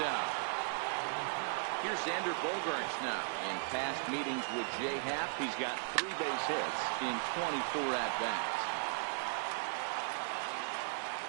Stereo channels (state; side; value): silent; left; digital silence